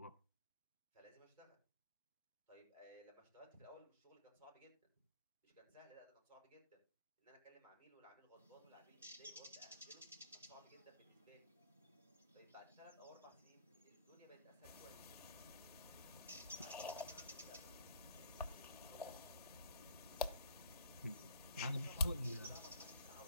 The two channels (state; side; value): inverted; both; correlation -0.56